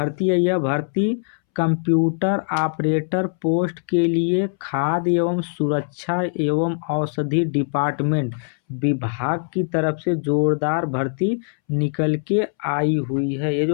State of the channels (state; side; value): silent; right; 64 dB below the other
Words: है, यह भर्ती कंप्यूटर ऑपरेटर पोस्ट के लिए खाद्य एवं सुरक्षा एवं औषधि डिपार्टमेंट विभाग की तरफ से जोरदार भर्ती निकल के आई हुई है। ये